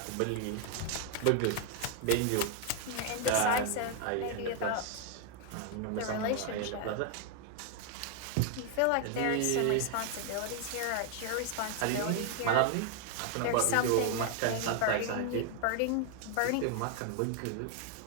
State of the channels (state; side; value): different; both; correlation 0.00